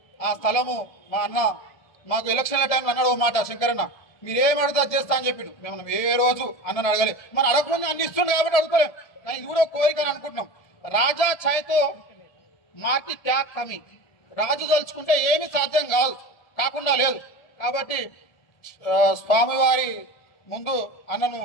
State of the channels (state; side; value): late; right; 1.9 ms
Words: ఆ స్థలము మా అన్న మాకు ఎలక్షన్ల టైంలో అన్నాడు ఓ మాట, శంకరన్న మీరేం అడిగితే చేస్తా అని చెప్పిండు. మేము ఏ రోజు అన్నను అడగలే. మనం అడగకుండా అన్ని ఇస్తుండే కాబట్టి అడుగుకోలేం. కానీ ఇది కూడా కోరిక అని అనుకుంటున్నాం. రాజా ఛాయ్తో మాకి ట్యాగ్ కమి. రాజు తలుచుకుంటే ఏమీ సాధ్యం కాకుండా లేదు. కాబట్టి స్వామివారి ముందు అన్నను